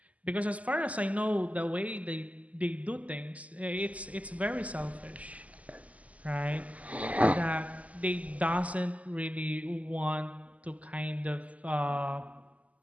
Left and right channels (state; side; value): late; left; 0.071 ms